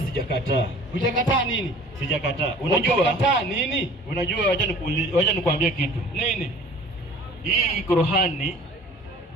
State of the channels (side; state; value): both; normal; correlation 0.47